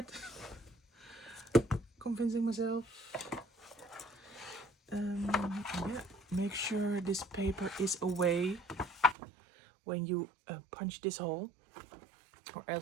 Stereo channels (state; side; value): drops out; left; at 9.2 s